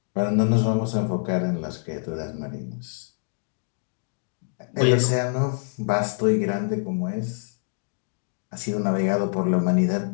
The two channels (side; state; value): right; silent; digital silence